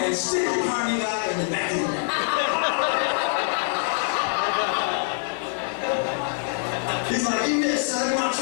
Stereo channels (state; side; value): silent; right; 62 dB below the other